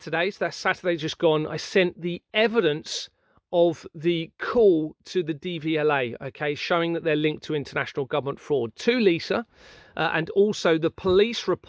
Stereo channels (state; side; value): identical; both; correlation 1.00